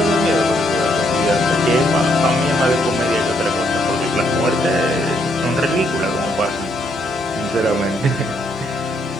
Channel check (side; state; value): both; normal; correlation 0.73